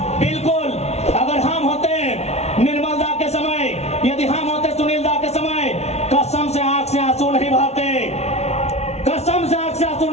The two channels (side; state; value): right; late; 0.31 ms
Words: बिल्कुल अगर हम होते निर्मल दा के समय, यदि हम होते सुनील दा के समय, कसम से आंख से आंसू नहीं बहाते, कसम से आंख से आंसू